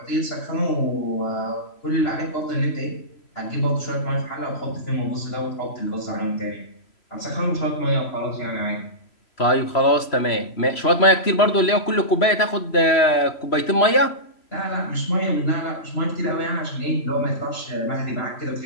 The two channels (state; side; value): late; right; 3.0 ms